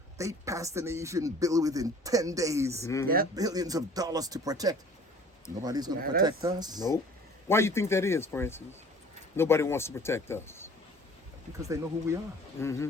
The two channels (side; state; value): both; normal; correlation 0.49